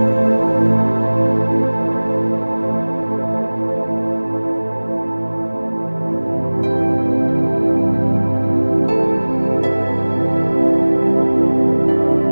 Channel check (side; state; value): both; inverted; correlation -1.00